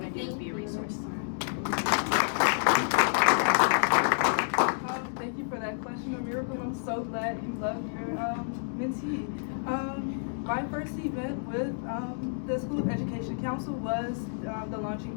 to do, is be a resource. Thank you for that question, Miracle. I'm so glad you loved your mentee. My first event with the School of Education Council was the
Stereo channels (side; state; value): right; silent; digital silence